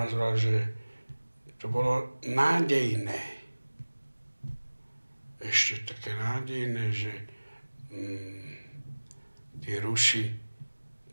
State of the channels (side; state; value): both; inverted; correlation -1.00